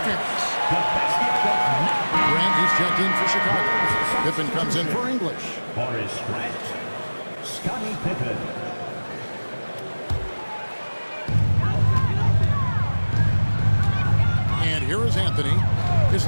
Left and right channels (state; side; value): inverted; both; correlation -1.00